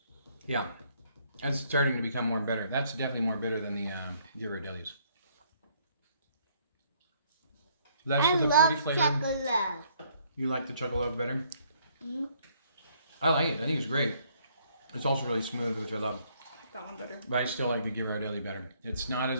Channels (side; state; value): both; inverted; correlation -0.66